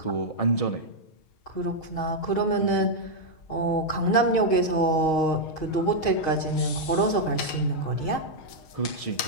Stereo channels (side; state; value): right; late; 6.4 ms